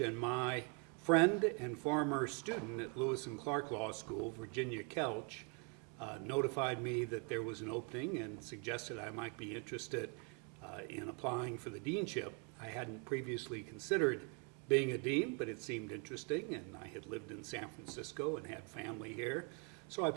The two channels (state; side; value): quieter; left; 35.4 dB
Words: my friend and former student at Lewis and Clark Law School, Virginia Kelch, notified me that there was an opening and suggested I might be interested in applying for the deanship. I hadn't previously considered being a dean, but it seemed interesting, and I had lived in San Francisco and had family here. So I